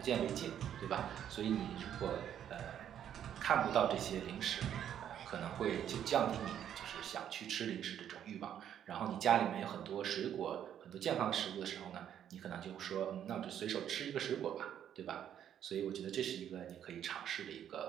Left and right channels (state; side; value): quieter; left; 9.9 dB